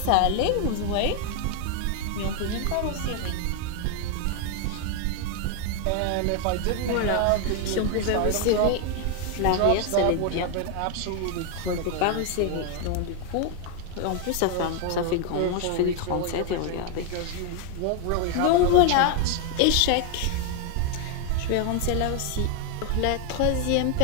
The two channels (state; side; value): different; both; correlation 0.01